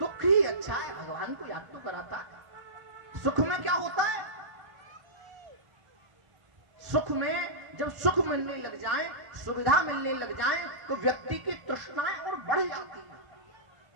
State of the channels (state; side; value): late; left; 1.4 ms